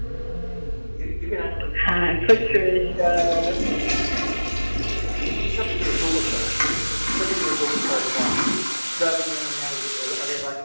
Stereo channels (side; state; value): both; inverted; correlation -1.00